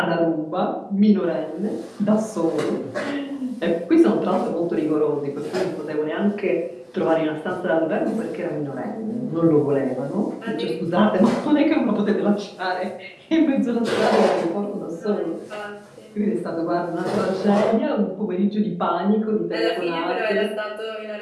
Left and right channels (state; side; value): identical; both; correlation 1.00